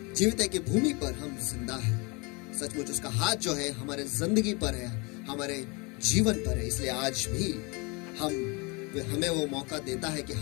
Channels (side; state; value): right; quieter; 28.8 dB